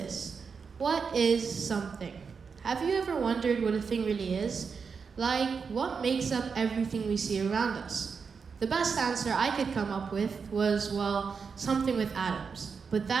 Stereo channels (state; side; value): quieter; left; 5.6 dB